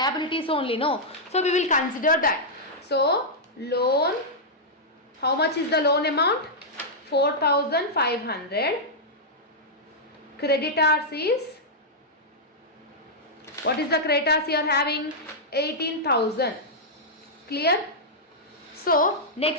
only, no. So we will consider that. So loan, how much is the loan amount? 4,500. Creditors is, what is the creditors you are having? 18,000. Clear? So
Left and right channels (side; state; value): both; normal; correlation -0.08